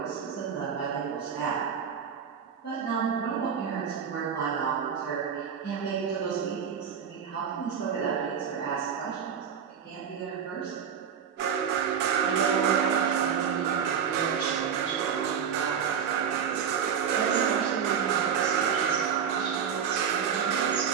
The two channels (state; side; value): quieter; left; 7.5 dB